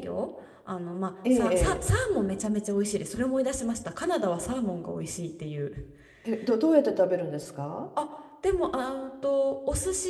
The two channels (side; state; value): both; identical; correlation 1.00